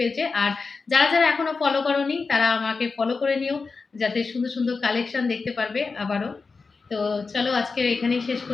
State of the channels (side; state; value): right; quieter; 4.4 dB